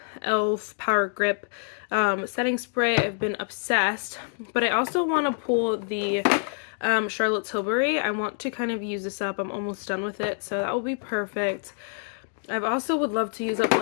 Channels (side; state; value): right; silent; 61 dB below the other